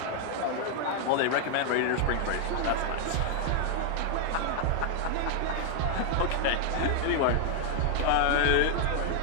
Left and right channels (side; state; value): both; different; correlation 0.00